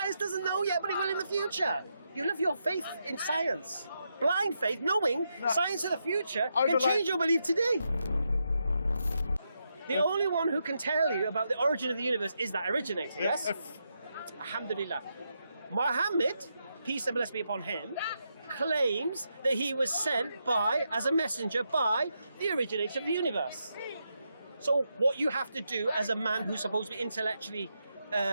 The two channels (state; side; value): inverted; both; correlation -0.83